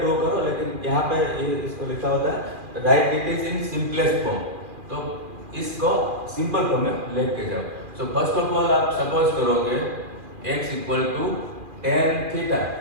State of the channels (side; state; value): left; late; 2.4 ms